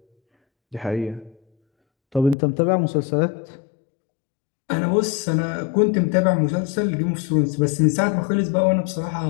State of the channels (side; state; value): right; drops out; at 2.4 s